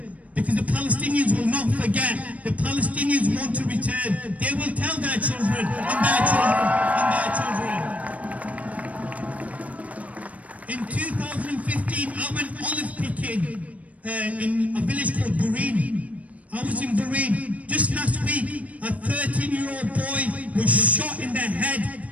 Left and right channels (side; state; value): left; late; 0.068 ms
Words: Because the Palestinians will not forget. The Palestinians want to return. They will tell their children and their children and their children. In 2015, I went olive picking in a village called Bureen. I was in Bureen. Just last week, a 13-year-old boy was shot in the head